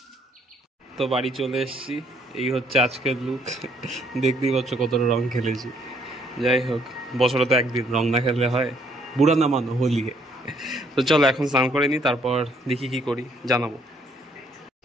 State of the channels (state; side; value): normal; both; correlation 0.67